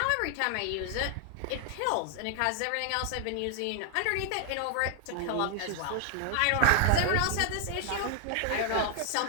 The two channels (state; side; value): different; both; correlation 0.00